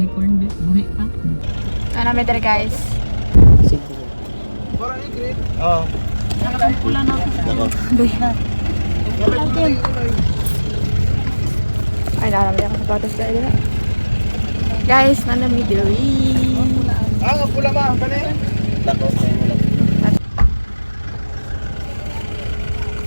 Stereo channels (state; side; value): inverted; both; correlation -1.00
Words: corn beef, buhi pa. Ano may diri guys? Parang i-grade. Oo. Pula na ako. Ay, nakalami ako sa patos dahil na. Guys, nanami diri. Nga pula ma, kani? Lako, kayo mo lang.